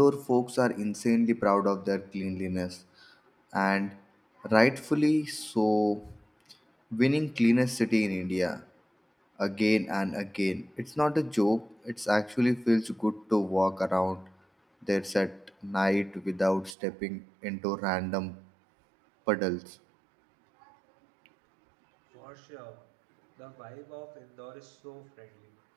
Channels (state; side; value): drops out; left; at 16.8 s